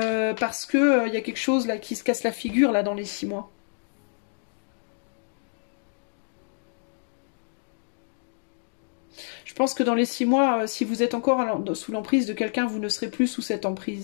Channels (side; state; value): right; silent; 57 dB below the other